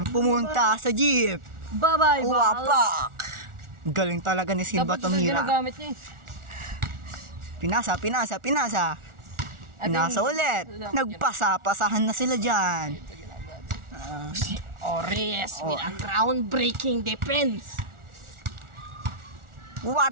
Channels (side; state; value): left; late; 1.4 ms